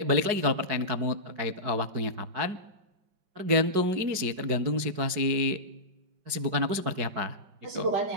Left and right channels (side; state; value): left; late; 5.3 ms